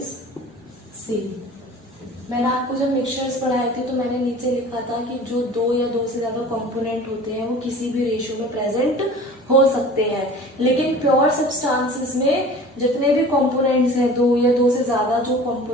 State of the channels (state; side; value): normal; both; correlation 0.42